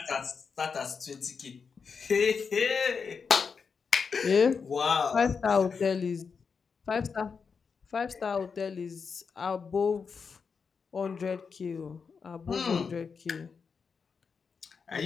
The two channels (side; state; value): right; quieter; 5.6 dB